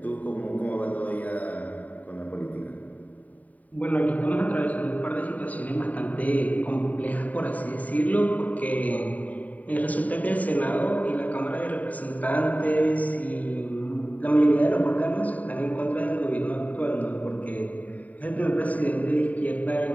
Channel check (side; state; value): right; late; 0.072 ms